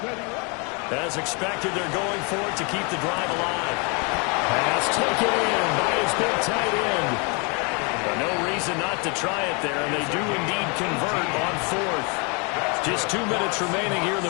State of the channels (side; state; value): right; quieter; 33.0 dB